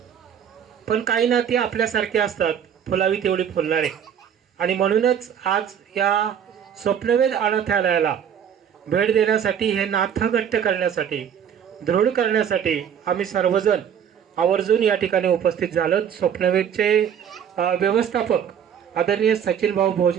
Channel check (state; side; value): quieter; left; 8.5 dB